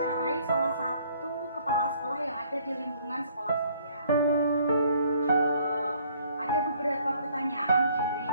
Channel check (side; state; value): both; inverted; correlation -0.60